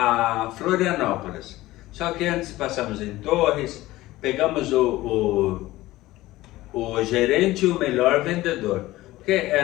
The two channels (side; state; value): right; quieter; 17.4 dB